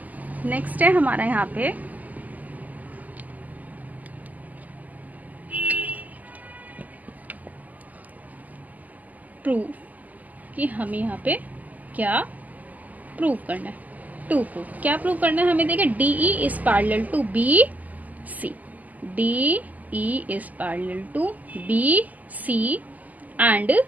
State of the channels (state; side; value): late; left; 0.080 ms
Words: प्रूफ, कि हमें यहाँ पे क्या प्रूव करना है। टू प्रूव, क्या प्रूव करना है हमें, देखिए DE is parallel to BC, DE is parallel to BC and